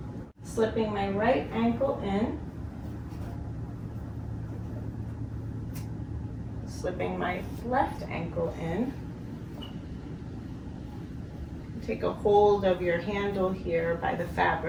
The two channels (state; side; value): identical; both; correlation 1.00